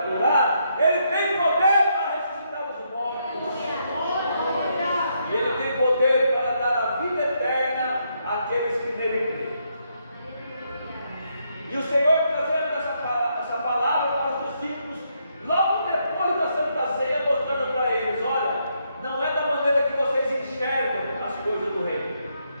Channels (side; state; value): both; inverted; correlation -0.77